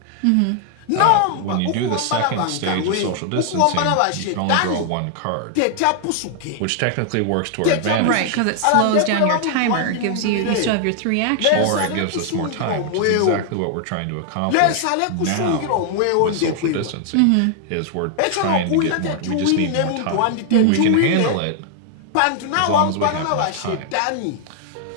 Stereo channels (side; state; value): both; different; correlation 0.00